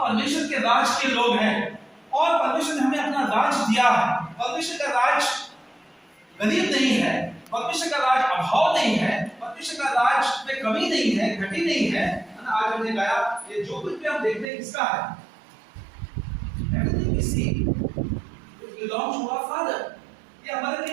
परमेश्वर के राज के लोग हैं, और परमेश्वर ने हमें अपना राज दिया है। परमेश्वर का राज गरीब नहीं है, परमेश्वर का राज अभाव नहीं है, परमेश्वर का राज में कमी नहीं है, घटी नहीं है। आज हमने गाया, ये जो कुछ भी हम देखते हैं किसका है? Everything we see belongs to our Father. ये हमारे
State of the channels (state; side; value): drops out; left; at 14.5 s